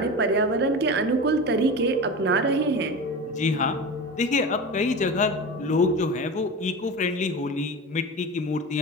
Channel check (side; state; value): both; normal; correlation 0.28